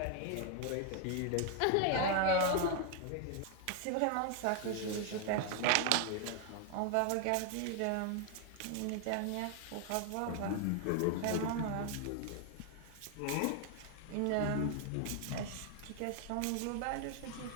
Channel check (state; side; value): different; both; correlation 0.00